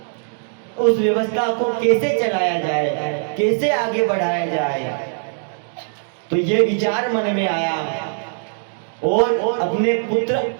उस व्यवस्था को कैसे चलाया जाए, कैसे आगे बढ़ाया जाए, तो ये विचार मन में आया और अपने पुत्र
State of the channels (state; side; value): silent; left; digital silence